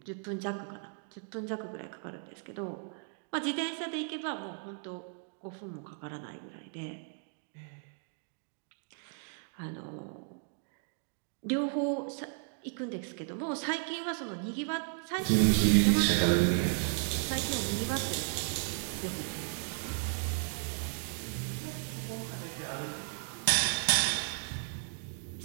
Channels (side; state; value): left; silent; 55 dB below the other